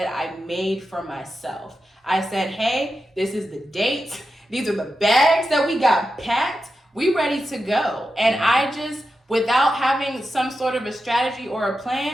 I made for myself. I said, hey, this is the date. These are the bags that we got packed. We ready to go. And I just, without having some sort of a strategy or a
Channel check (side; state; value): both; normal; correlation 0.90